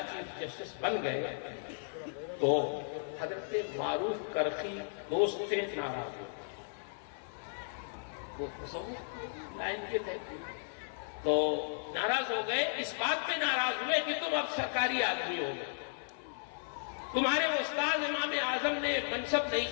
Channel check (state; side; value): silent; right; 54 dB below the other